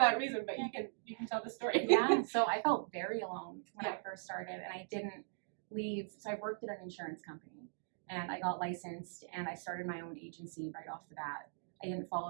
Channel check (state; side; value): silent; left; digital silence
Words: reason, but you can tell the story. So I felt very alone when I first started, and I didn't leave. So I worked at an insurance company. and I got licensed and I started my own agency right off the bat. I didn't